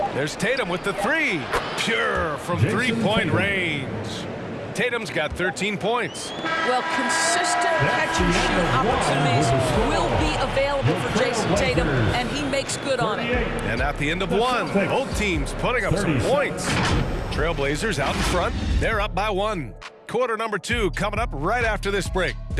There's Tatum with the three. Pure from three-point range. Tatum's got 13 points. Well, consistent catch and shoot opportunities will be available for Jason Tatum, and he makes good on it. And at the end of one, both teams putting up some points. Trailblazers out in front. They're up by 1. Quarter number 2 coming up right after this break.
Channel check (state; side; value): identical; both; correlation 1.00